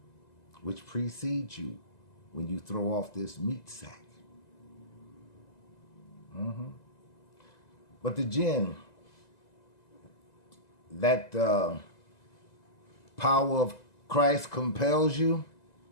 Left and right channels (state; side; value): late; right; 2.0 ms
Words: which precedes you when you throw off this meat sack. But the Djinn, that power of Christ compels you,